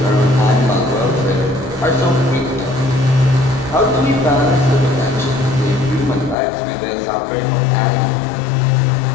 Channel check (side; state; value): right; drops out; at 6.4 s